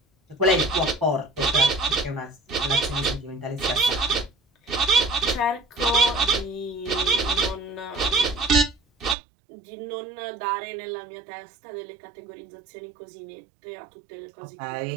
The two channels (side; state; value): left; drops out; at 9.2 s